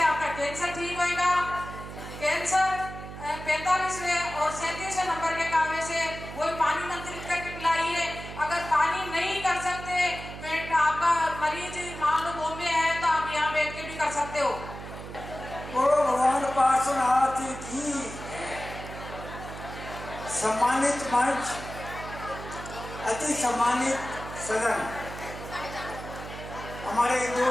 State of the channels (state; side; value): noise; right; hum, 11 dB below the sound